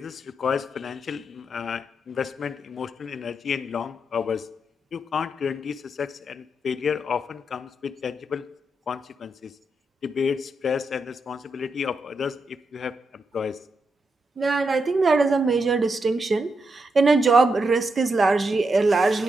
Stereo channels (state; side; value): normal; both; correlation 0.83